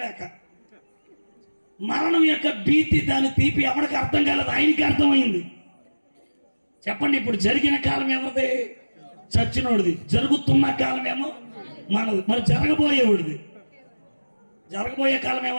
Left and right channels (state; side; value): inverted; both; correlation -1.00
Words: మరణం యొక్క భీతి, దాని తీపి ఎవరికి అర్థం కాలేదు, ఆయనకి అర్థమైంది. చెప్పండి, ఇప్పుడు జరిగిన కాలం ఎవరిది? చచ్చినోడిది. జరుగుతున్న కాలం ఏమో మనది. మరి జరగబోయే కాలం